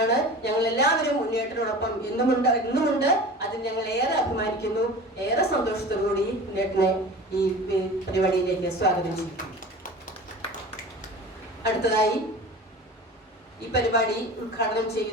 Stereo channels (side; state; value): both; normal; correlation 0.37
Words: ഞങ്ങൾ എല്ലാവരും ഉണ്ണിയേട്ടനോടൊപ്പം ഇന്നുമുണ്ട്. അതിൽ ഞങ്ങൾ ഏറെ അഭിമാനിക്കുന്നു. ഏറെ സന്തോഷത്തോടുകൂടി ഉണ്ണിയേട്ടനെ ഈ പരിപാടിയിലേക്ക് സ്വാഗതം ചെയ്യുന്നു. അടുത്തതായി ഈ പരിപാടി ഉദ്ഘാടനം